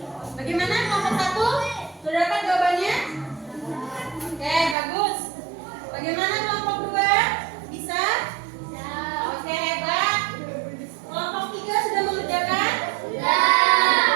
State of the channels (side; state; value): left; drops out; at 4.8 s